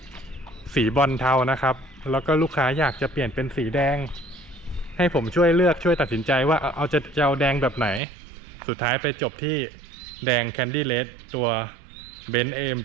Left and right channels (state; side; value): drops out; left; at 8.0 s